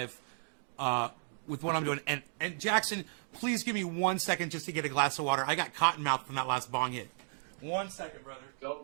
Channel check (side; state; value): left; silent; digital silence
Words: with what I'm doing. And Jackson, please give me 1 second just to get a glass of water. I got cotton mouth from that last bong hit. 1 second, brother.